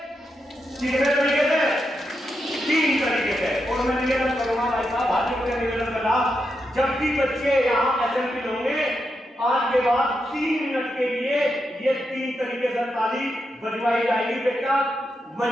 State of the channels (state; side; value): normal; both; correlation 0.85